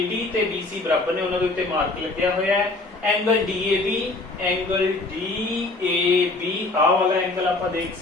ਤੇ BC ਬਰਾਬਰ ਨੇ, ਉਹਨਾਂ ਦੇ ਉੱਤੇ ਮਾਰਕ ਲੱਗਿਆ ਹੋਇਆ ਹੈ। ਐਂਗਲ DAB ਆ ਵਾਲਾ ਐਂਗਲ ਆਪਾਂ ਦੇਖ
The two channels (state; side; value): quieter; right; 3.2 dB